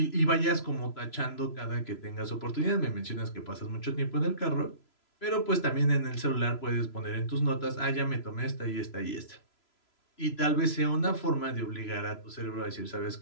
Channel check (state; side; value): late; right; 3.0 ms